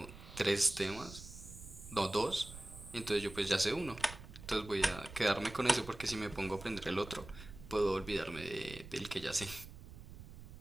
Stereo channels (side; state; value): right; noise; rumble, 14 dB below the sound